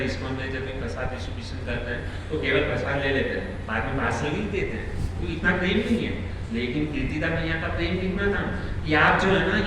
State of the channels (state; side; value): identical; both; correlation 1.00